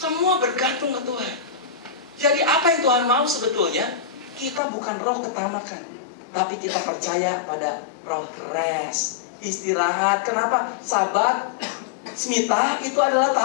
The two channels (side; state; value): right; drops out; at 4.6 s